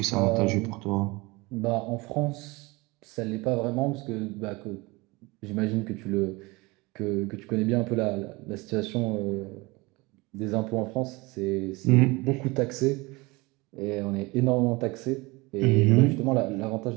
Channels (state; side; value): quieter; left; 24.0 dB